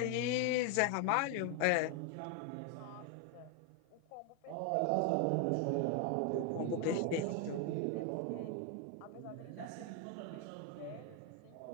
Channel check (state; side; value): different; both; correlation 0.01